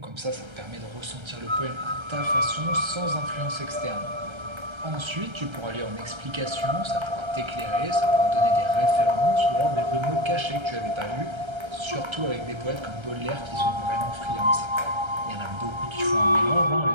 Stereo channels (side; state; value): left; late; 1.3 ms